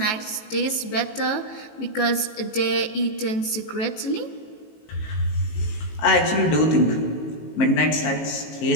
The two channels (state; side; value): late; right; 19 ms